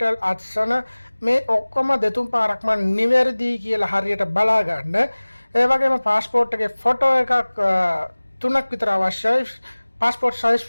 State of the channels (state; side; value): inverted; both; correlation -1.00